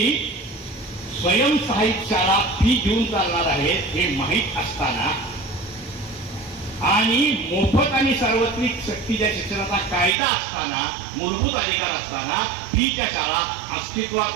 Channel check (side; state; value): left; drops out; at 10.2 s